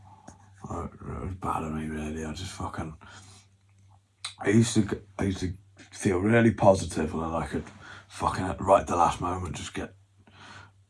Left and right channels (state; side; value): identical; both; correlation 1.00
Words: It was bad of me, really. I just fucking. I used to feel really positive, and then I could fucking right at the last moment just get